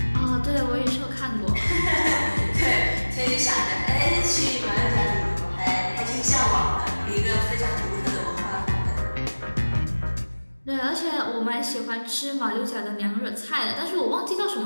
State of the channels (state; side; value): inverted; both; correlation -1.00